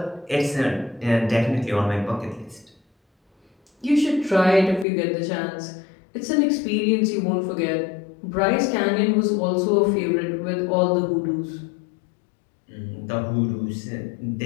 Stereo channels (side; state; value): right; drops out; at 4.9 s